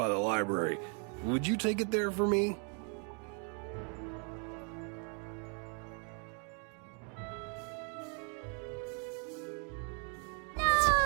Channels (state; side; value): quieter; left; 40.0 dB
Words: the library. Would you take it there for me?